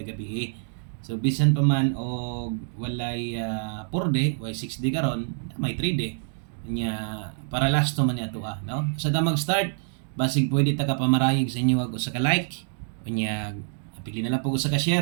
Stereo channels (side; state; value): left; silent; digital silence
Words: gabi. So bisan pa man og walay 4 day, way 6 day karon, may 3 day. Nya para last man niya to no. Sa ta mag-start, basig pwede ta ka pamarayig sa inyo og sa ka like. Unya pili na lang po sa ka